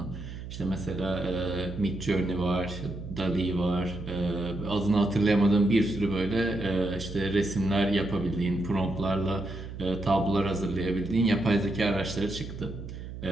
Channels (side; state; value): right; noise; hum, 10 dB below the sound